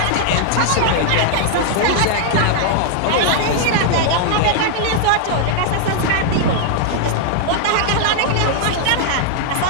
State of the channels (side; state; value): both; different; correlation 0.00